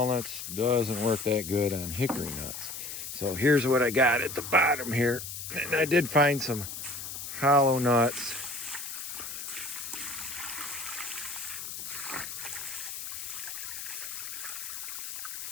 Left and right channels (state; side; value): noise; left; hiss, 7 dB below the sound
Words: Doesn't work that good on hickory nuts. So here's what I got at the bottom here. And I did find some hollow nuts.